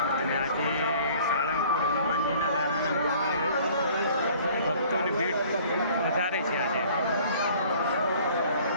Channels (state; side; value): inverted; both; correlation -0.53